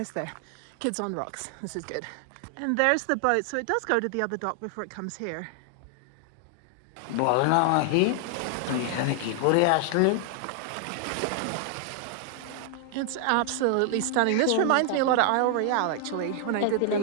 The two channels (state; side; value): different; both; correlation 0.00